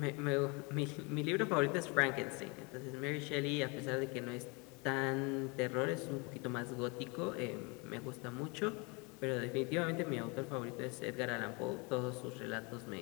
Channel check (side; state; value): right; quieter; 29.9 dB